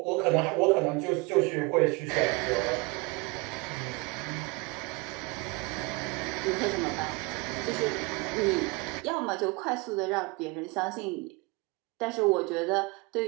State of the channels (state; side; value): quieter; left; 26.7 dB